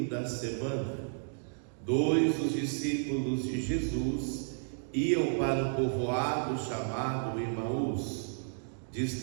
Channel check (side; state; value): left; silent; digital silence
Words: da semana, dois dos discípulos de Jesus iam para um povoado chamado Emaús,